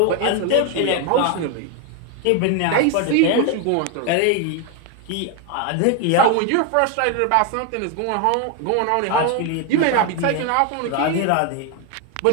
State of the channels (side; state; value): both; different; correlation 0.01